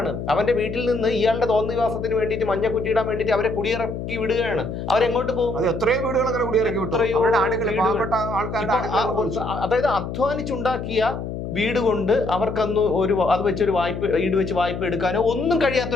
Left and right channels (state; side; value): noise; left; hum, 6 dB below the sound